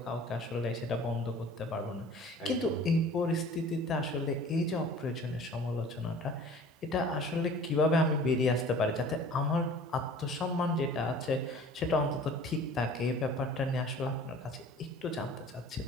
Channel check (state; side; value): normal; both; correlation 0.46